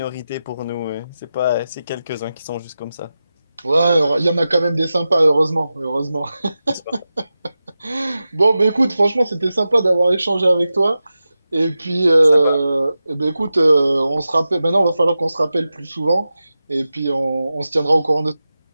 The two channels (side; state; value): both; inverted; correlation -0.93